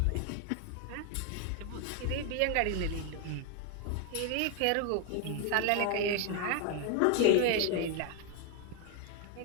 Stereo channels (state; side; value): different; both; correlation 0.00